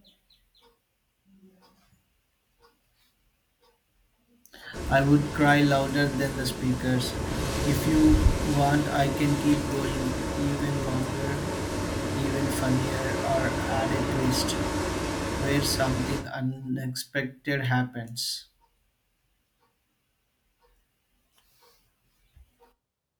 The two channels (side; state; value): both; identical; correlation 1.00